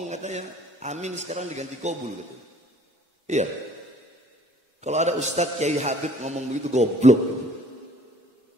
katanya amin sekarang diganti kobul gitu. Iya. Kalau ada Ustadz Kiai Habib ngomong begitu goblok.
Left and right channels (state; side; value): normal; both; correlation 0.55